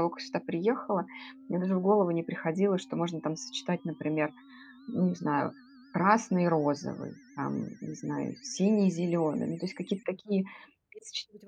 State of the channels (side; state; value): both; identical; correlation 1.00